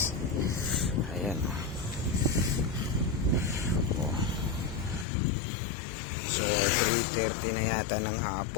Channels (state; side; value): drops out; right; at 5.1 s